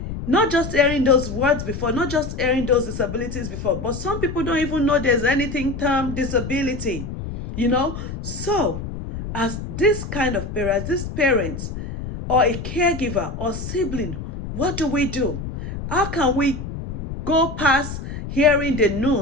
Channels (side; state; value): left; noise; rumble, 7 dB below the sound